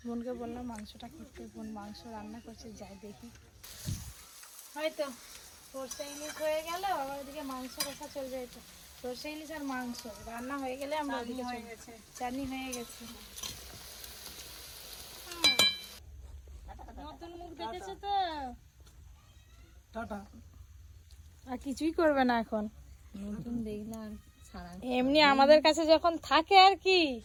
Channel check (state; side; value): identical; both; correlation 1.00